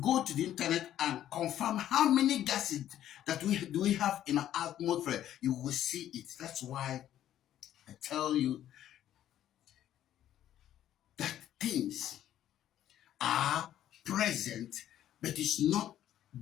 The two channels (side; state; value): right; quieter; 11.7 dB